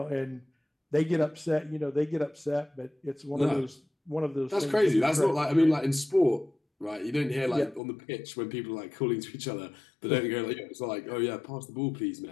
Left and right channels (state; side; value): drops out; right; at 7.8 s